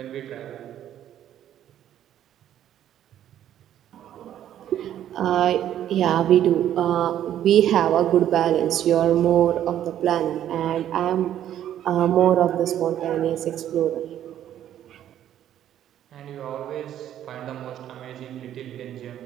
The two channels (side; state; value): left; quieter; 11.1 dB